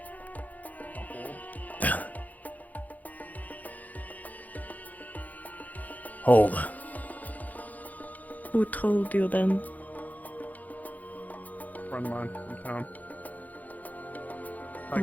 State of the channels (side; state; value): right; late; 0.079 ms